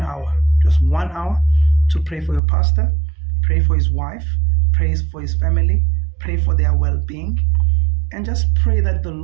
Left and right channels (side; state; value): left; drops out; at 2.4 s